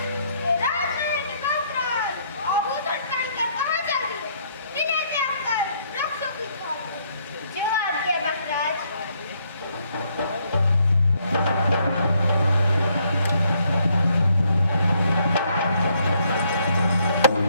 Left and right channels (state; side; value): inverted; both; correlation -0.70